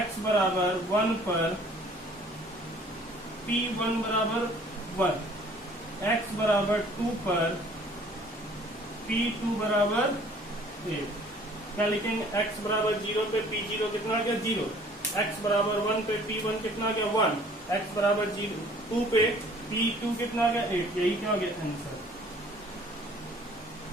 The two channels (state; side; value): normal; both; correlation 0.54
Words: बराबर 1 पर P1 बराबर 1, x बराबर 2 पर P2 बराबर 1। क्या लिखेंगे, x बराबर 0 पे P0 कितना आ गया, 0। x बराबर 1 पे P1 कितना आ गया, 1। x बराबर 2 पे P2 कितना आ गया, 8। यही क्या हो गया आंसर,